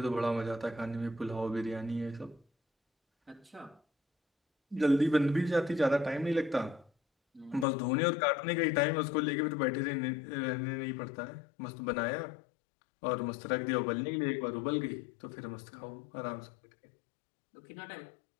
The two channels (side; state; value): right; drops out; at 7.7 s